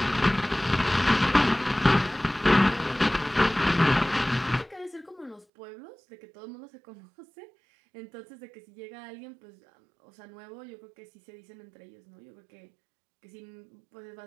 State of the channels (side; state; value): left; drops out; at 5.5 s